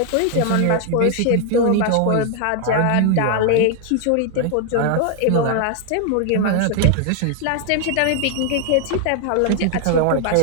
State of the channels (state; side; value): different; both; correlation 0.00